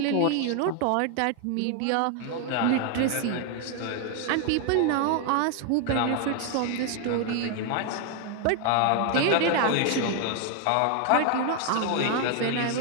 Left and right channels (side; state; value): both; different; correlation 0.01